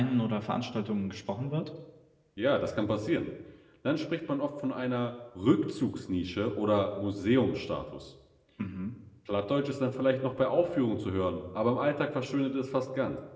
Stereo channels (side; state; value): both; identical; correlation 1.00